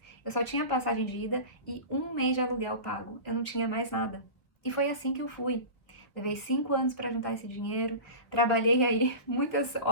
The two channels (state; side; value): late; right; 1.1 ms